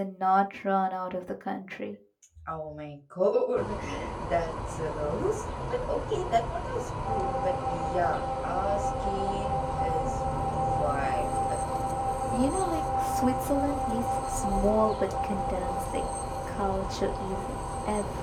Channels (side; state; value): both; identical; correlation 1.00